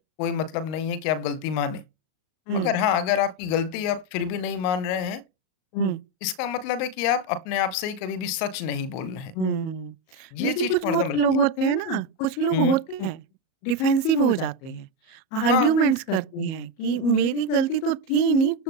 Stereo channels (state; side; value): late; right; 38 ms